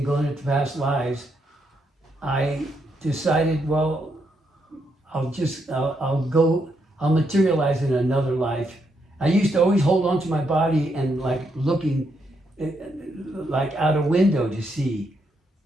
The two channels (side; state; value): both; normal; correlation 0.78